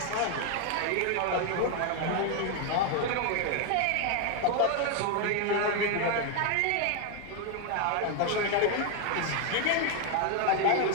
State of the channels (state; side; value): different; both; correlation 0.01